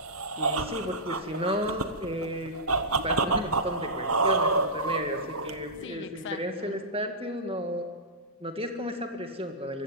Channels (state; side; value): normal; both; correlation -0.14